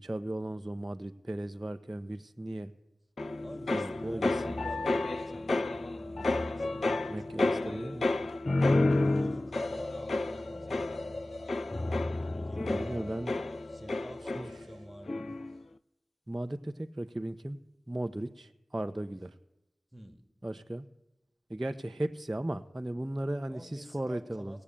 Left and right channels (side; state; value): both; normal; correlation 0.96